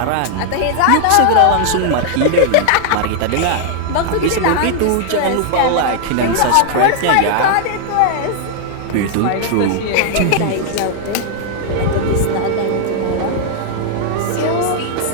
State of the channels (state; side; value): different; both; correlation -0.01